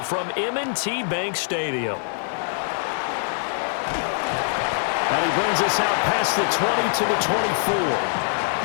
from M&T Bank Stadium. And he brings us out past the 20 to the 24.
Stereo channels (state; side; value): silent; right; digital silence